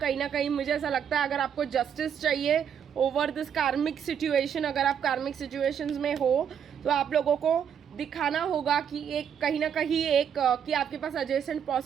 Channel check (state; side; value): quieter; left; 8.2 dB